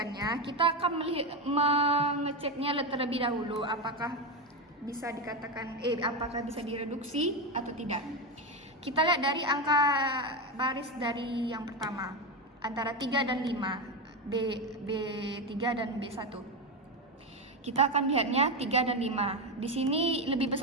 kita akan mengeceknya terlebih dahulu apakah bisa dikatakan apakah bisa direduksi atau tidak. Kita lihat dari angka baris dari yang pertama, antara 3 dan 5, B3 dan B1. Kita akan lihatnya 3 dan 5. Di sini lebih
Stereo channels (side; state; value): both; normal; correlation 0.12